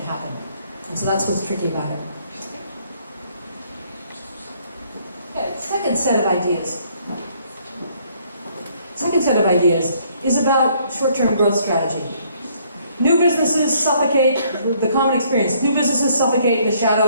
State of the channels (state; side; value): inverted; both; correlation -0.65